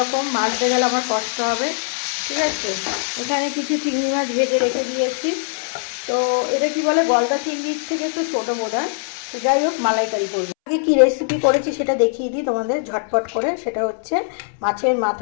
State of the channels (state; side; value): silent; right; 65 dB below the other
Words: মাছতে গেলে আমার কষ্ট হবে, ঠিক আছে। এখানে কিছু চিংড়ি মাছ ভেজে রেখে দিয়েছি। তো এটা কি বলে, গলদা চিংড়ির থেকে একটু ছোটো বোধ হয়। তো যাই হোক, মালাইকারি করবো। আগে কী রেসিপি করেছি সেটা দেখিয়ে দিই তোমাদের ঝটপট করে। সেটা হচ্ছে মাছের